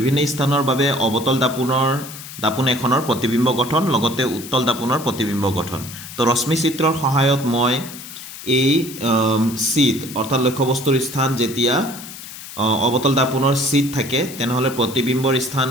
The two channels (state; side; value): noise; left; hiss, 13 dB below the sound